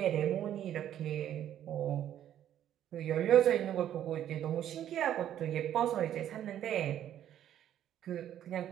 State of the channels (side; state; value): left; quieter; 11.0 dB